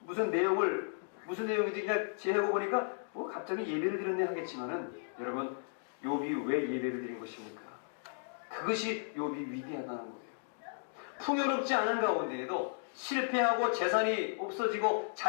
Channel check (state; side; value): silent; right; digital silence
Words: 무슨 내용인지 그냥 지혜고 보니까 갑자기 예배를 드렸네 하겠지만은 여러분, 욥이 왜 예배를 드린 것입니까? 그것이 욥이 위대하다는 거예요. 풍요롭지 않은 가운데에도 실패하고 재산이 없어지고